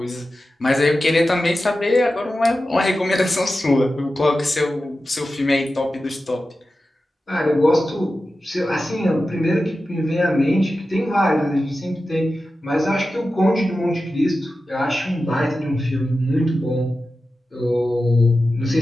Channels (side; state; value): both; normal; correlation 0.93